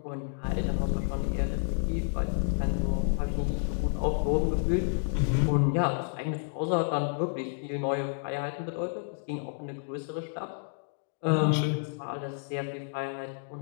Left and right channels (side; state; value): right; silent; digital silence